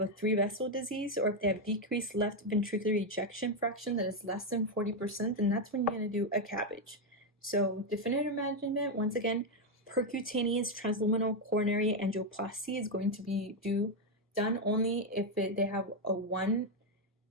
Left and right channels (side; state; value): both; normal; correlation 0.04